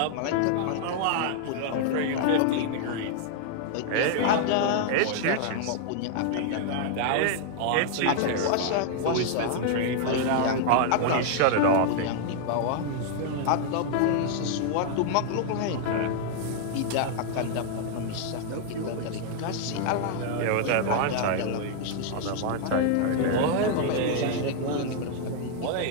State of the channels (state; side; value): different; both; correlation 0.00